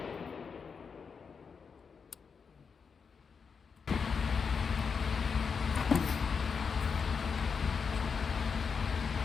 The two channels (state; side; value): quieter; right; 5.8 dB